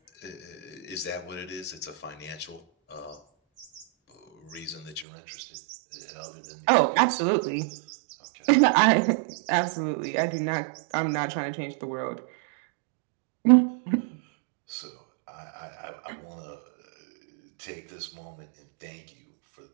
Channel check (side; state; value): left; drops out; at 5.1 s